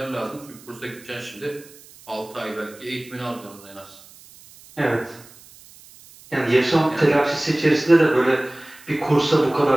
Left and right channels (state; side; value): noise; right; hiss, 23 dB below the sound